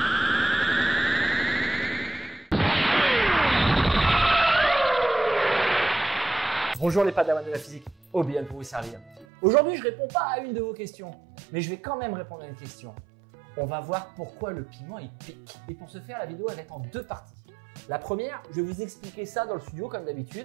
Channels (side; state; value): left; drops out; at 9.2 s